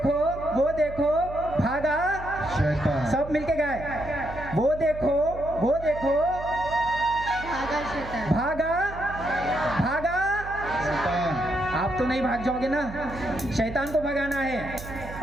भागा। शैतान, सब मिलके गाए, वो देखो भागा भागा। शैतान, आप तो नहीं भाग जाओगे ना, शैतान को भगाना है।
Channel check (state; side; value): noise; right; hum, 12 dB below the sound